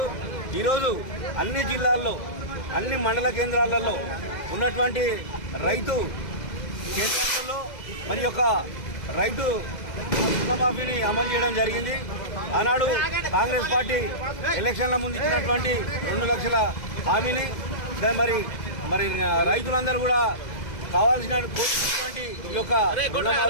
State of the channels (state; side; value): late; right; 2.0 ms